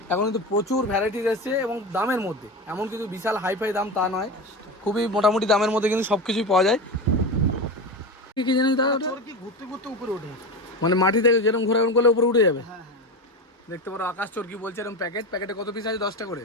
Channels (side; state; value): both; normal; correlation 0.22